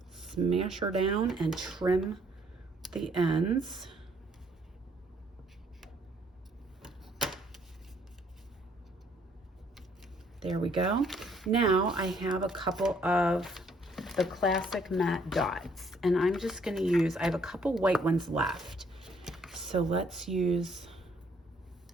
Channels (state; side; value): normal; both; correlation 0.65